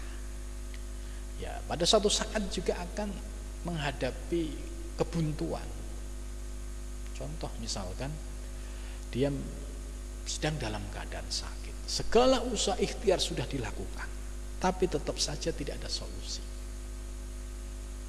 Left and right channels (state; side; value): identical; both; correlation 1.00